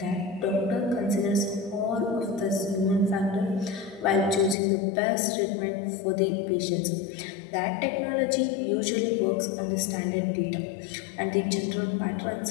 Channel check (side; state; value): right; drops out; at 4.5 s